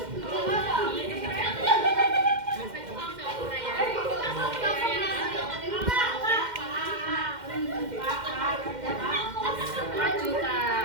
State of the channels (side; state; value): left; late; 2.1 ms